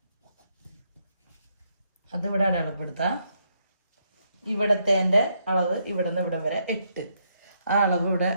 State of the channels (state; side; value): inverted; both; correlation -0.76